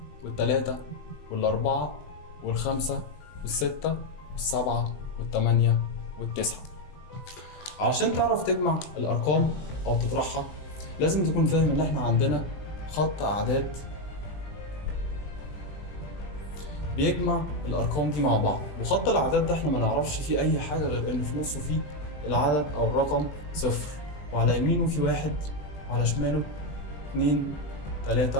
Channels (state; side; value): late; right; 20 ms